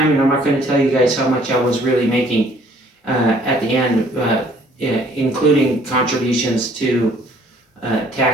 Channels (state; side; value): normal; both; correlation 0.59